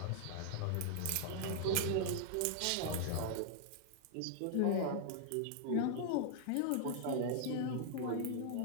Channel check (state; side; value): different; both; correlation -0.01